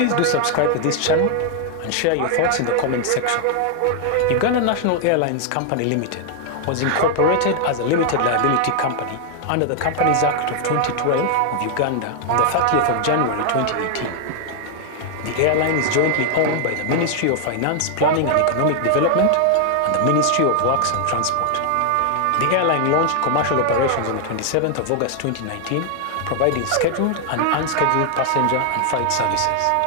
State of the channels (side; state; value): both; different; correlation 0.00